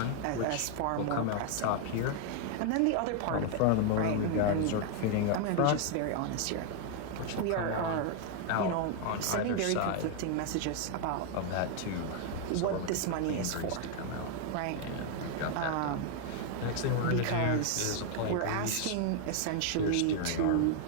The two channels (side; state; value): both; different; correlation 0.00